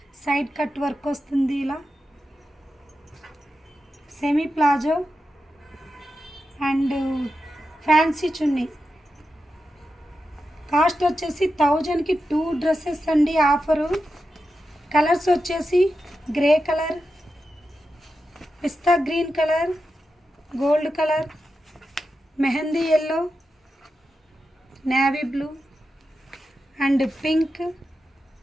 సైడ్ కట్ వర్క్ వస్తుంది. ఇలా semi palazzo and fancy chunni. Cost వచ్చేసి 1000కి 2 డ్రెస్సెస్ అండి. ఆఫరు కలర్స్ వచ్చేసి grey colour, pista green colour, gold colour, mehendi yellow, navy blue and pink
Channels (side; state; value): both; normal; correlation 0.90